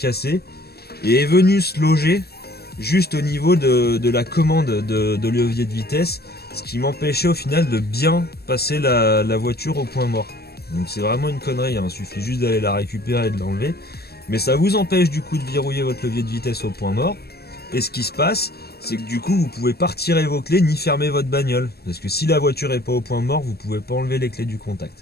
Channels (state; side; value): late; right; 0.46 ms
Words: et est venue se loger juste au niveau de la commande de levier de vitesse, ce qui m'empêchait au final de bien passer la voiture au point mort. Donc c'est vraiment une connerie, hein. Il suffit juste d'aller la récupérer et de l'enlever. Mais ça vous empêche du coup de verrouiller votre levier de vitesse au point mort. Et ce qui se passe, c'est que du coup vous pouvez pas retirer vos clés ni fermer votre bagnole. Parce que si la voiture est pas au point mort, vous pouvez pas enlever les clés du